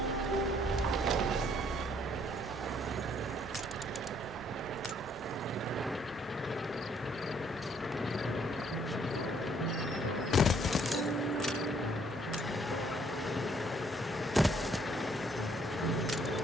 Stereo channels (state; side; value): normal; both; correlation 0.65